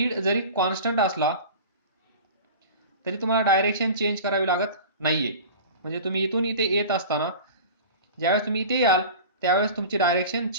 जरी कॉन्स्टंट असला तरी तुम्हाला डायरेक्शन चेंज करावी लागत नाहीये. म्हणजे तुम्ही इथून इथे येत असताना ज्यावेळेस तुम्ही इथे याल त्यावेळेस तुमची डायरेक्शन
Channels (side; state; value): both; inverted; correlation -0.36